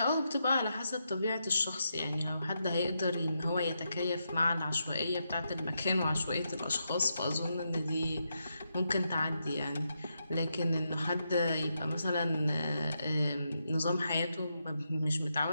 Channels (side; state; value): both; inverted; correlation -0.84